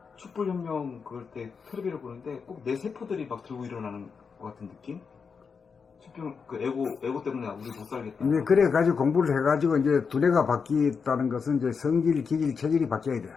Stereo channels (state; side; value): quieter; right; 5.7 dB